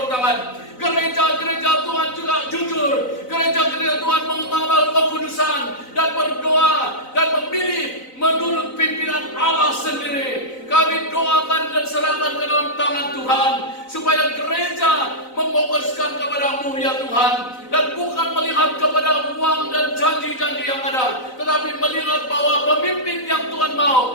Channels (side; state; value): right; late; 4.0 ms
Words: tangan. Gereja-gereja Tuhan juga jujur. Gereja-gereja Tuhan mengamal kekudusan dan berdoa dan memilih menurut pimpinan Allah sendiri. Kami doakan dan serahkan ke dalam tangan Tuhan, supaya gereja memfokuskan kepada-Mu ya Tuhan, dan bukan melihat kepada uang dan janji-janji yang ada, tetapi melihat bahwa pemimpin yang Tuhan